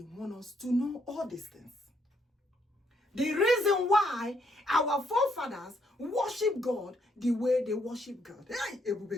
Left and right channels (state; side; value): normal; both; correlation 0.73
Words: wants us to know all these things. The reason why our forefathers worship God the way they worship God. Hey,